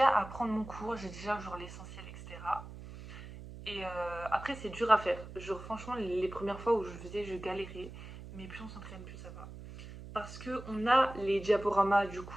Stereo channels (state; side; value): noise; right; hum, 13 dB below the sound